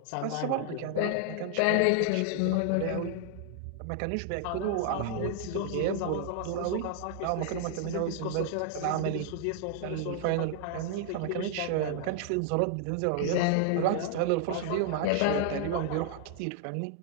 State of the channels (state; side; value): different; both; correlation 0.00